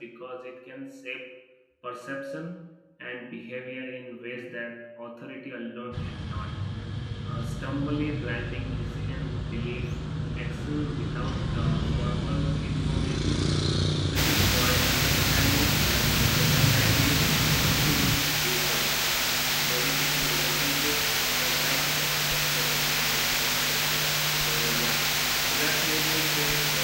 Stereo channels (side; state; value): both; identical; correlation 1.00